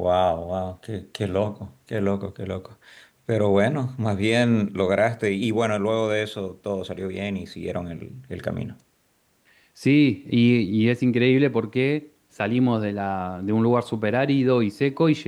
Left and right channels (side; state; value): both; identical; correlation 1.00